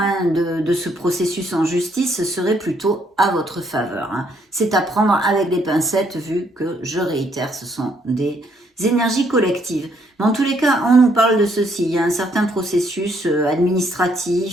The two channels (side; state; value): both; normal; correlation 0.70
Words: de ce processus en justice serait plutôt à votre faveur. C'est à prendre avec des pincettes vu que, je réitère, ce sont des énergies collectives. Mais en tous les cas, on nous parle de ceci. Il y a un certain processus